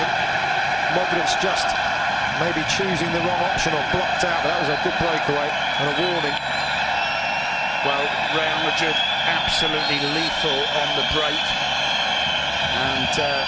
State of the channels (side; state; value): both; identical; correlation 1.00